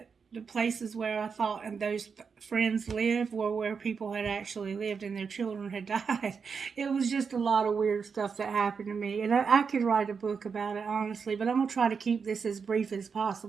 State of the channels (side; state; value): left; quieter; 5.8 dB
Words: the places where I thought and those friends lived were where people had actually lived and their children had died. It was just a lot of weird stuff that happened to me. And I could write a book about it, honestly, but I'm going to try to keep this as brief as